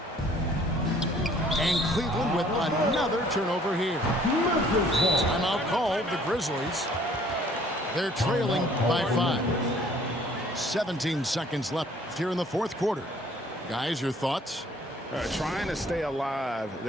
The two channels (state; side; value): normal; both; correlation 0.58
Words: And Cleveland with another turnover here. Timeout called, the Grizzlies. They're trailing by 5. 17 seconds left here in the fourth quarter. Guys, your thoughts? Trying to stay alive,